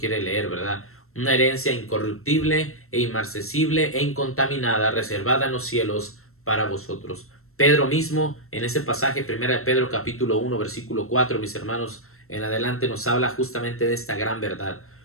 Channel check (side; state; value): right; late; 0.62 ms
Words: leer, ¿verdad? Una herencia incorruptible e inmarcesible e incontaminada, reservada en los cielos para vosotros. Pedro mismo, en ese pasaje, primera de Pedro capítulo 1, versículo 4, mis hermanos, en adelante nos habla justamente de esta gran verdad.